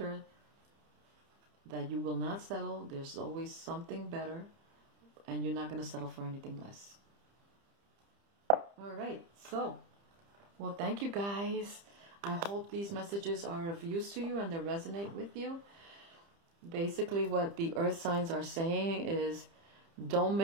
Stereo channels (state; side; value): late; left; 30 ms